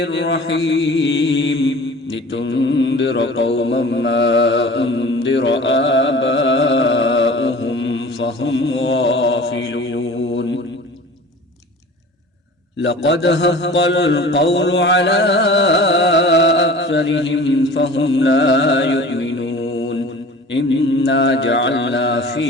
الرحيم لتنذر قوما ما أنذر آباؤهم فهم غافلون. لقد حق القول على أكثرهم فهم لا يؤمنون. إنا جعلنا في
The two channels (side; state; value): both; normal; correlation 0.42